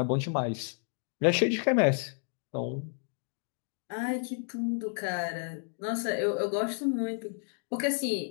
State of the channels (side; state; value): right; silent; 57 dB below the other